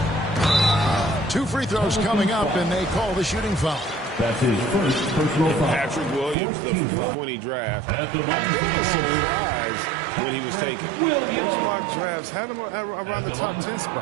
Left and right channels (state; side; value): drops out; left; at 6.4 s